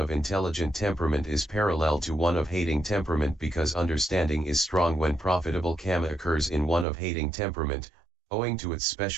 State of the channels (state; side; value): drops out; left; at 6.9 s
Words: intelligent temperament is parallel to one of hating temperament because understanding is strong when profitable karma occurs in one of hating temperament, owing to its